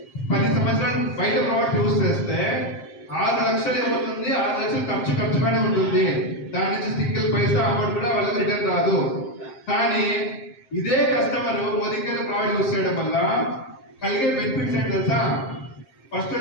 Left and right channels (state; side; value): late; right; 7.6 ms